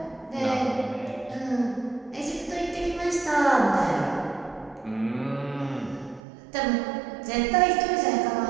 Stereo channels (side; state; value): left; drops out; at 6.2 s